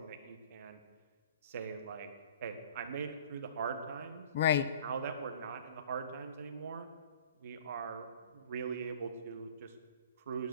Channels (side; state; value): both; inverted; correlation -0.46